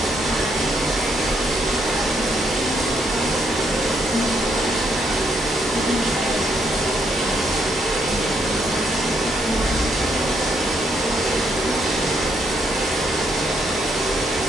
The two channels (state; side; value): normal; both; correlation 0.74